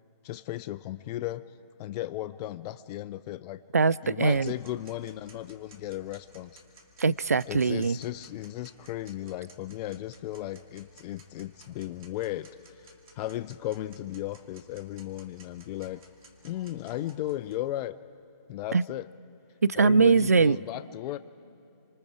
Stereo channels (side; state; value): both; inverted; correlation -0.60